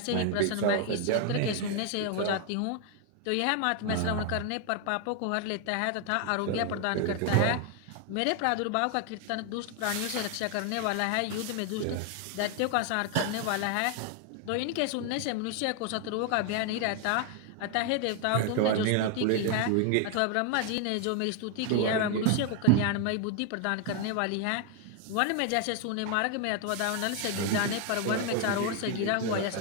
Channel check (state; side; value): different; both; correlation 0.00